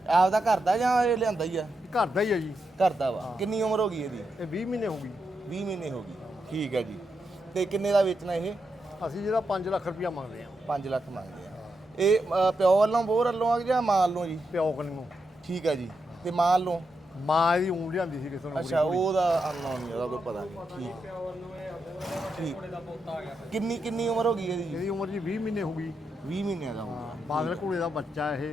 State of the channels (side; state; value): both; normal; correlation 0.85